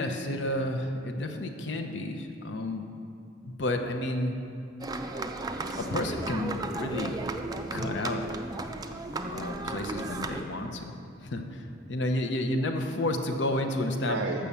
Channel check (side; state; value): both; normal; correlation 0.42